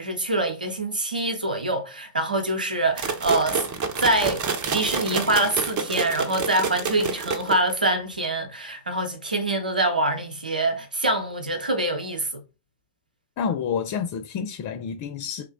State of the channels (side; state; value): both; inverted; correlation -0.31